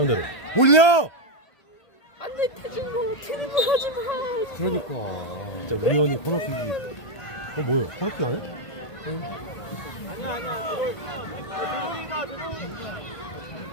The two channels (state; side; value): late; right; 1.3 ms